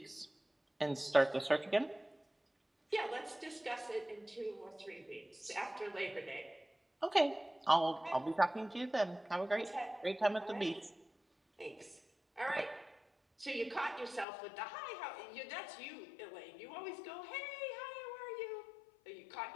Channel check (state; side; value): drops out; right; at 14.2 s